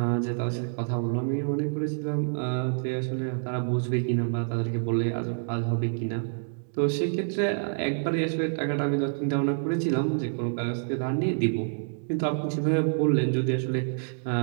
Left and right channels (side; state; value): left; silent; digital silence